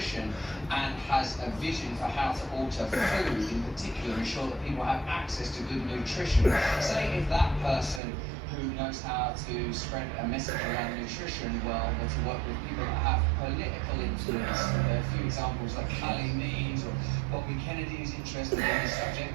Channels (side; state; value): left; drops out; at 8.0 s